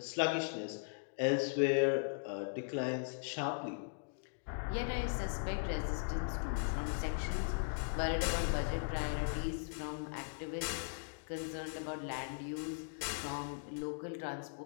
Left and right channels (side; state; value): right; silent; digital silence